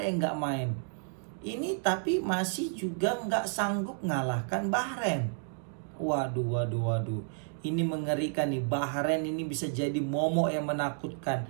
yang gak main. Ini tapi masih juga gak sanggup ngalahkan Bahrain. Waduh. Ini mengerikan nih. Bahrain ini bisa jadi momok yang menakutkan.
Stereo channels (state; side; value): silent; left; 57 dB below the other